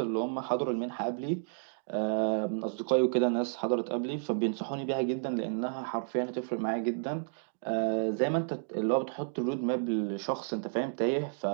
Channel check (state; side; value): silent; left; digital silence